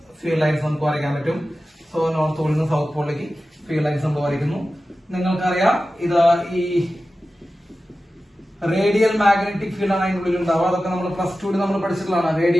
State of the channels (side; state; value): both; normal; correlation 0.94